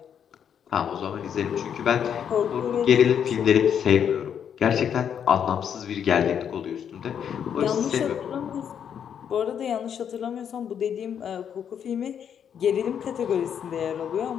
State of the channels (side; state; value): right; quieter; 8.3 dB